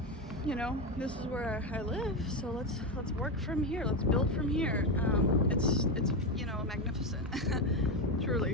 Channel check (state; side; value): normal; both; correlation 0.12